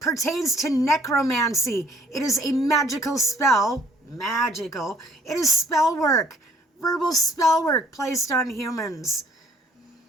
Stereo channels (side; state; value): both; normal; correlation 0.60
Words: pertains to necromancy. It is a magical spell. Magical. It is spell work. Verbal spell work placed on humans.